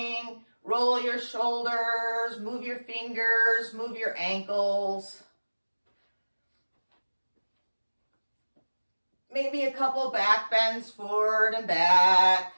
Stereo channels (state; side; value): inverted; both; correlation -1.00